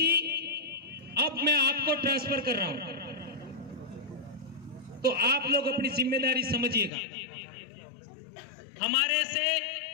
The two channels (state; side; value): drops out; right; at 6.9 s